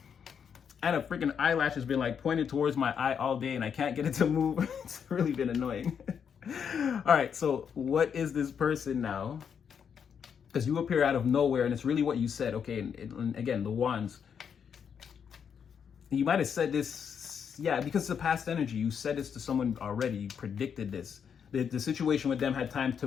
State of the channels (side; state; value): right; quieter; 7.4 dB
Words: And a freaking eyelash has been like pointed towards my eye all day and I can't get it to move. It's really been annoying. All right, so what is this person now? Because you appear out of nowhere and it's really what you said. Okay, and again, the wands. You might have said this, yeah, because it's a past energy. You said this to someone already. You predicted this. The situation with them had time to